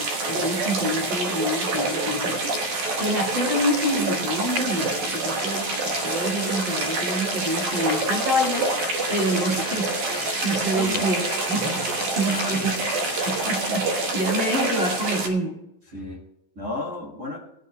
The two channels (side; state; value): left; late; 11 ms